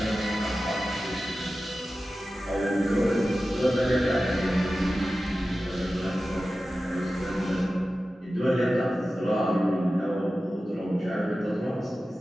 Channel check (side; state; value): both; normal; correlation 0.94